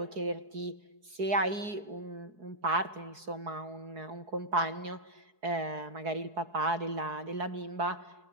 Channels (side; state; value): left; late; 4.7 ms